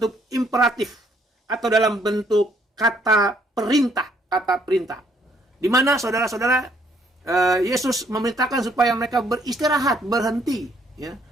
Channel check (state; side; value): normal; both; correlation 0.67